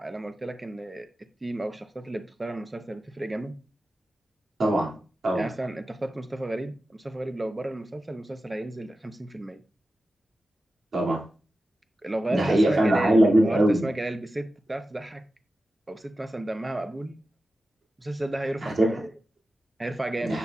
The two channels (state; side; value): normal; both; correlation 0.93